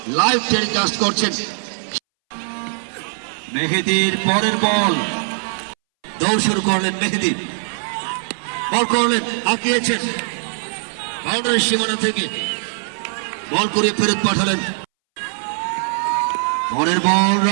লাইভ টেলিকাস্ট করছেন। মেহেদির পরের বল, দৌড় শুরু করলেন মেহেদি, বল করলেন, আঁকিয়েছেন বাউন্ডারি সীমানা থেকে, বল করে ফেরত পাঠালেন। পরের বল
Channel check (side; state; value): left; silent; 63 dB below the other